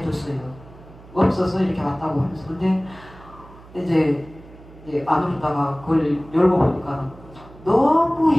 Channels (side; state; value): right; noise; hum, 21 dB below the sound